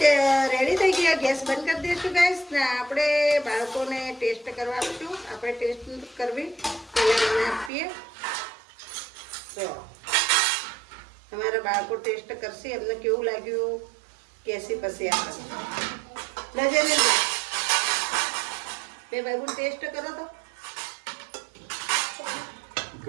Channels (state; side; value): drops out; left; at 7.7 s